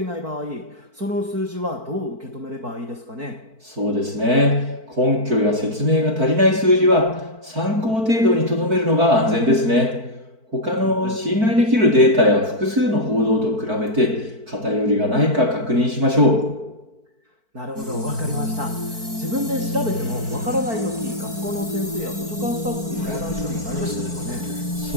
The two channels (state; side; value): late; left; 4.5 ms